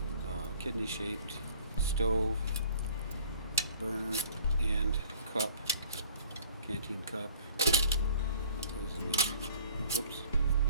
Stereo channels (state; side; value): inverted; both; correlation -0.52